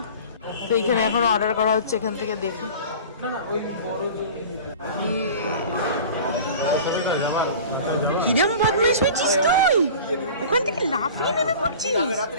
তো এখানে এখন অর্ডার করা হচ্ছে এখান থেকে দেখে। না না, ওই বড় যে কিরম বদমাইশ হয়েছিস তুই? ওখান থেকে লাফিয়ে নেমে পড়ছিস।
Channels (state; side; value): inverted; both; correlation -0.39